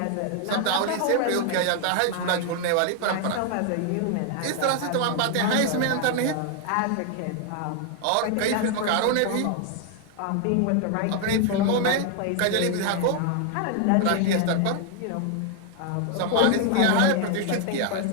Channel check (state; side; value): different; both; correlation 0.00